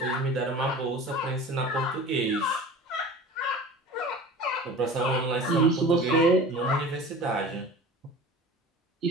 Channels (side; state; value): both; normal; correlation 0.38